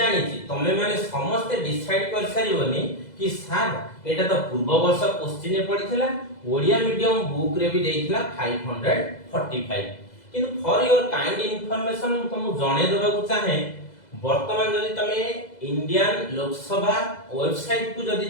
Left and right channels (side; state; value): right; late; 2.0 ms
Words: छी तमे माने समस्त डिसाइड कर सारिबनी कि सर एटा तो पूर्व वर्ष क्वेश्चन रे पडिथिला ओडिया मीडियम बुक रे भी देइथिला 545 किंतु फॉर योर काइंड इंफॉर्मेशन तुम जणे देबा को चाहे वर्तमान जदि तमे इंडियन लोकसभा वेबसाइट को